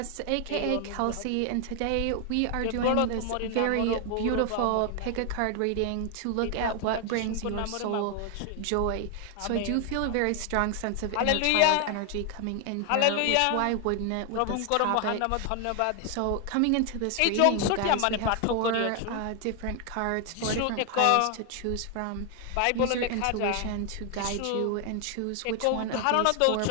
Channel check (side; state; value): both; different; correlation 0.00